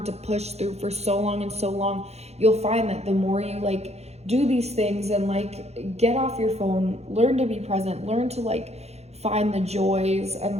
to push through for so long and so long. You'll find that the more you like do these things and like get off your phone, learn to be present, learn to like find the joys and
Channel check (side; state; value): left; late; 0.31 ms